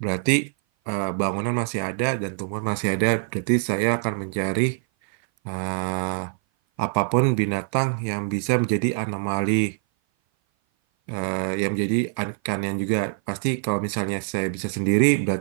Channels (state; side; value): silent; left; 57 dB below the other